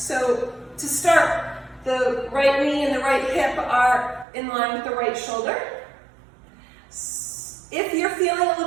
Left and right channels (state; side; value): drops out; left; at 4.2 s